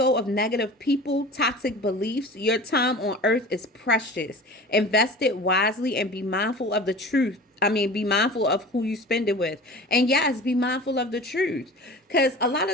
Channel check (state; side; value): normal; both; correlation 0.38